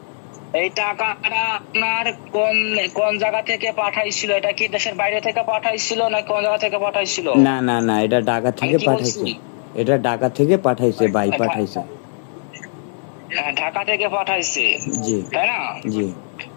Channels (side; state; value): right; silent; digital silence